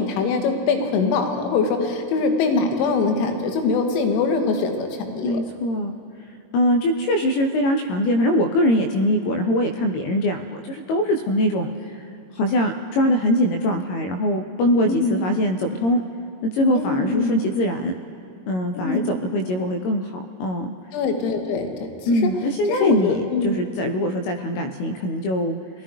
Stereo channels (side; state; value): right; late; 22 ms